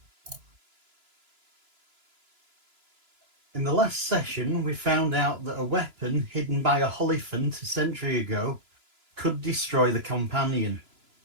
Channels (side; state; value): left; late; 2.9 ms